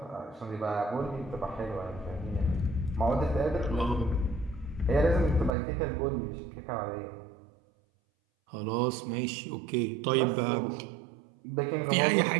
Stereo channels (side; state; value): left; drops out; at 5.6 s